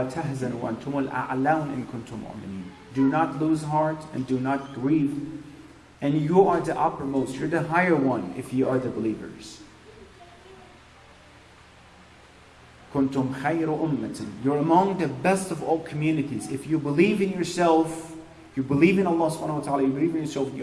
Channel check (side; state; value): both; identical; correlation 1.00